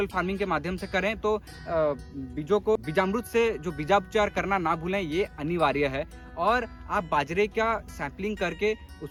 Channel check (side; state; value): both; identical; correlation 1.00